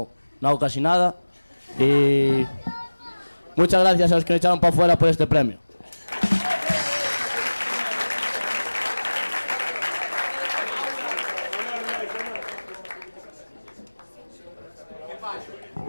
hago casi nada. Y muchas gracias a los que me echaron para afuera por este premio.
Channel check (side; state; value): both; inverted; correlation -1.00